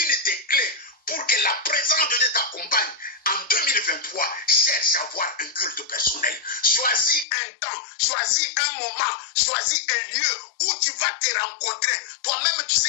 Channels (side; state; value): right; drops out; at 7.2 s